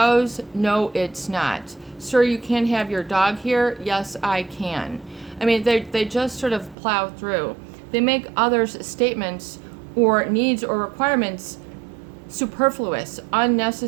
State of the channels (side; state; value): left; drops out; at 6.8 s